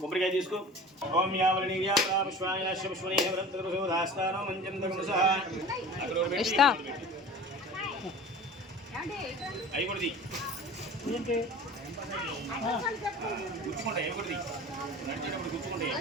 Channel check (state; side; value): normal; both; correlation 0.39